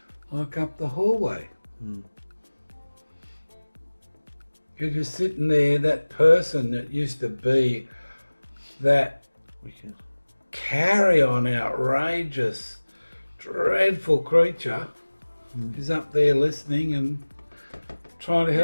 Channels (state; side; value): inverted; both; correlation -1.00